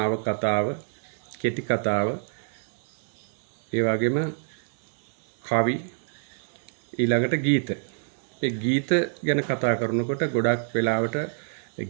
කතාව, කෙටි කතාව, ඒ වගේම කවි, ඊළඟට ගීත. මේ ගීත ගැන කතා කරනකොට ගොඩක් වෙලාවට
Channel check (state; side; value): silent; left; 60 dB below the other